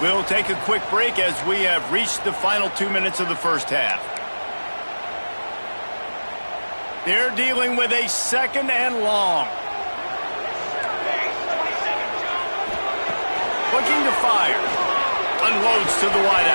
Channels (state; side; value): inverted; both; correlation -1.00